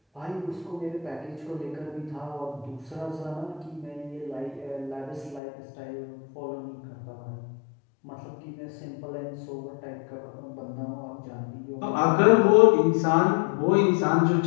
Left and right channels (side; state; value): right; drops out; at 5.4 s